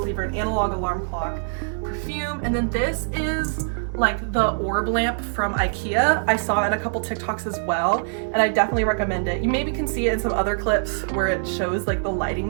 in analog alarm clock. Perfume, and then this is like the orb lamp from IKEA. I saw it in a couple TikToks as well, and I definitely recommend it. You maybe can see it in some other clips where it shows like the lighting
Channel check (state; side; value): silent; left; digital silence